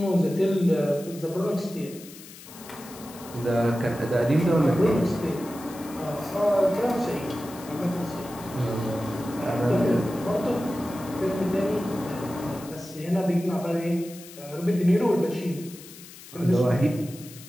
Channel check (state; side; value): noise; left; hiss, 17 dB below the sound